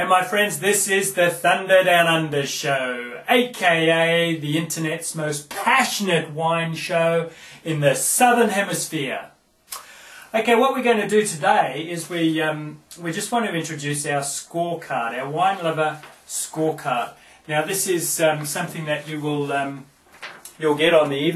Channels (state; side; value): identical; both; correlation 1.00